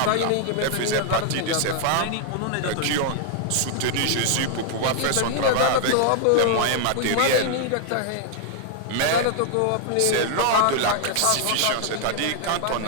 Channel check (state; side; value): different; both; correlation 0.00